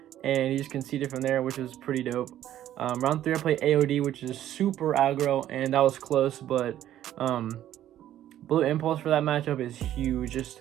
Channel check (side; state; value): left; quieter; 12.2 dB